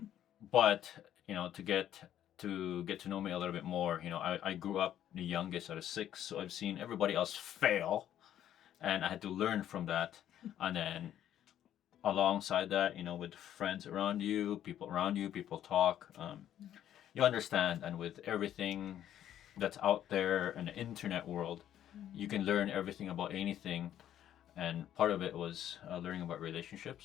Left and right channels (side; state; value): right; quieter; 11.1 dB